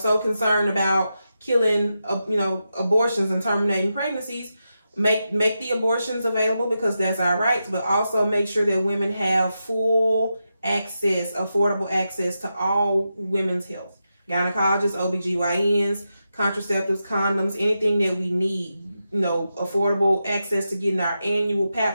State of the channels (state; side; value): inverted; both; correlation -0.88